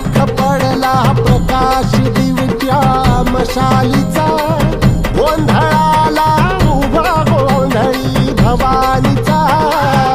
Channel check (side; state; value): both; identical; correlation 1.00